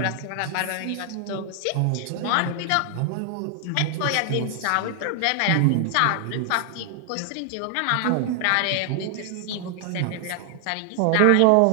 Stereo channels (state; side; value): different; both; correlation 0.00